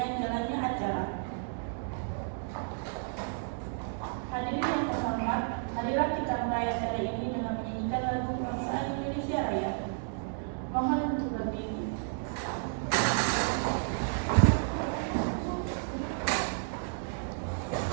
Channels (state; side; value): silent; left; digital silence